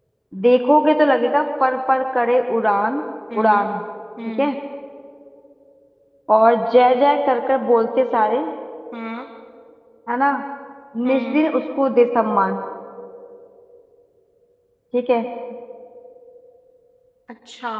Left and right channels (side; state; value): both; identical; correlation 1.00